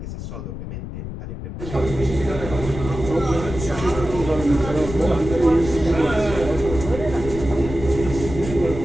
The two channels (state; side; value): noise; left; rumble, 8 dB below the sound